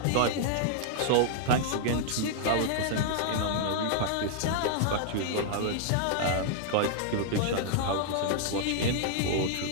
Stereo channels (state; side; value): different; both; correlation -0.01